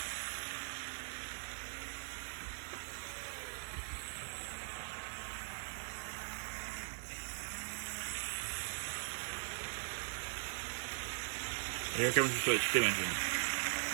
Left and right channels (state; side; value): silent; left; digital silence